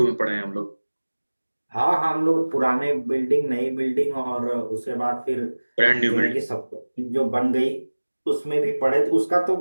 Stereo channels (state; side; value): inverted; both; correlation -1.00